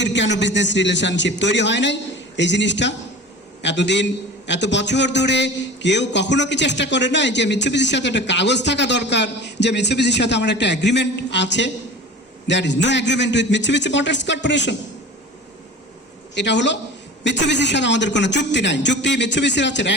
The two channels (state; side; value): normal; both; correlation 0.37